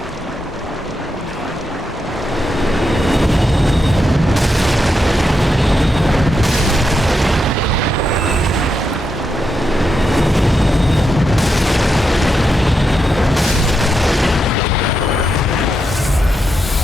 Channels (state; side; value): normal; both; correlation 0.84